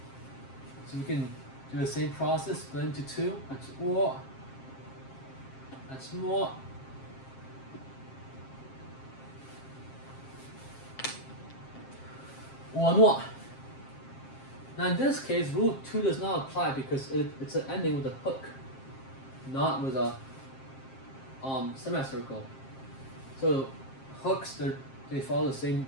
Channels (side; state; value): right; late; 7.5 ms